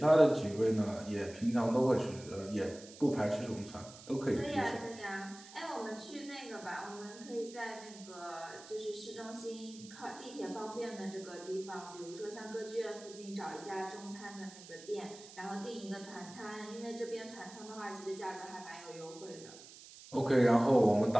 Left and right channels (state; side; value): noise; right; hiss, 17 dB below the sound